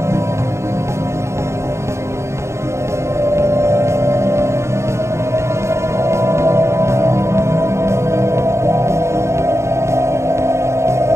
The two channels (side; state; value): left; late; 0.13 ms